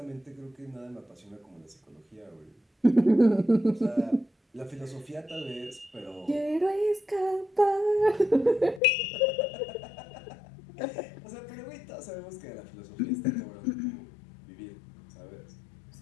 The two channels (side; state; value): right; drops out; at 8.8 s